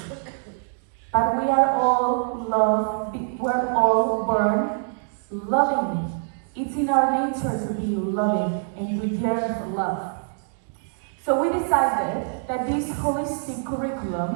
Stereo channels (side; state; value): left; silent; digital silence